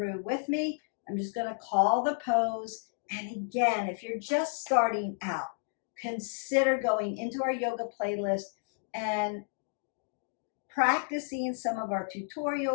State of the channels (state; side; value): silent; right; digital silence